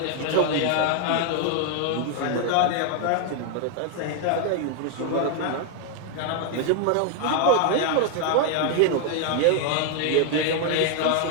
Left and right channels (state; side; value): different; both; correlation 0.01